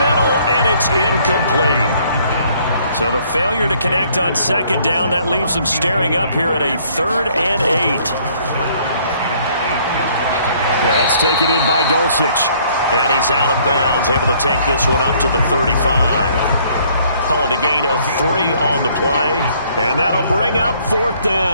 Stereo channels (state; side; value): inverted; both; correlation -0.62